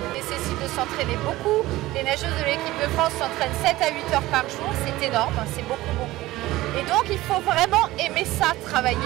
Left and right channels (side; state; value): left; quieter; 17.5 dB